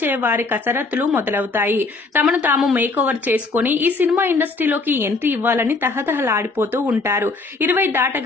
వారి కసరత్తులు మొదలవుతాయి. తమను తాము మేకోవర్ చేసుకుని ఈ సినిమా ఇండస్ట్రీలోకి ఎంట్రీ ఇవ్వాలని తహతహలాడిపోతూ ఉంటారు. 20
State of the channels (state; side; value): quieter; right; 3.7 dB